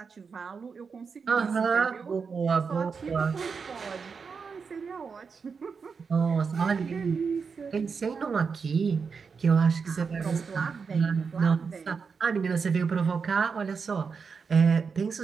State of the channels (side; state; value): left; quieter; 5.5 dB